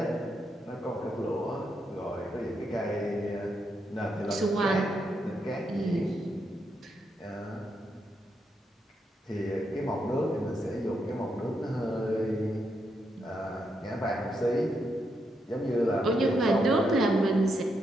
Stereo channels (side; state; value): both; normal; correlation 0.81